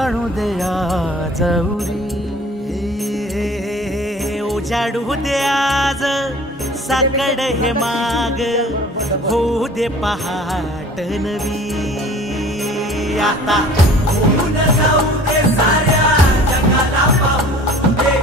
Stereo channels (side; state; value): both; normal; correlation 0.47